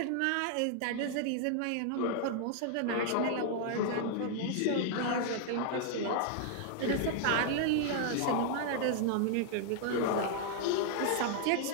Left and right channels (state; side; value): different; both; correlation -0.01